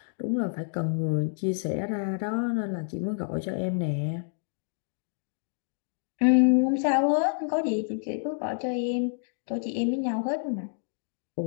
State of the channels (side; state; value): right; silent; digital silence